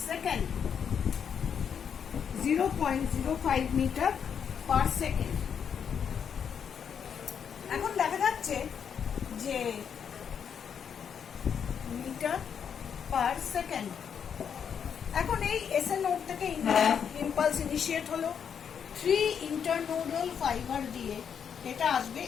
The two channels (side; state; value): right; quieter; 7.5 dB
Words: second, 0.05 metre per second. এখন দেখা যাচ্ছে যে মিটার পার সেকেন্ড। এখন এই এসএ নোড থেকে ইম্পালস ইনিশিয়েট হলো, 3 ইন্টারনোডাল ফাইবার দিয়ে এটা আসবে